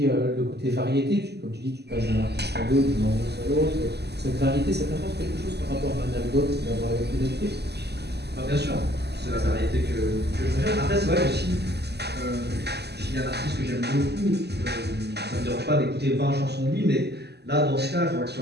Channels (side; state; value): left; late; 0.49 ms